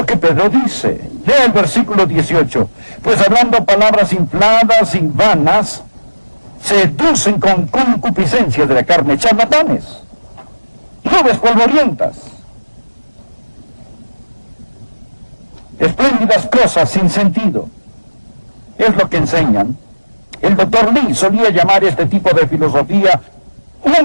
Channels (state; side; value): inverted; both; correlation -1.00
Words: que Pedro dice. Lea el versículo 18. Pues hablando palabras infladas y vanas, seducen con concupiscencia de la carne, charlatanes, nubes polvorientas, espléndidas cosas sin sentido. Es lo que enseñan. El doctor Lee solía llamar este tipo de filosofía